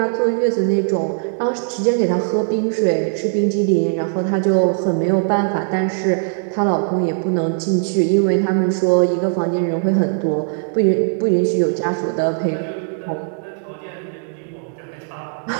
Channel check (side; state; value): left; silent; 63 dB below the other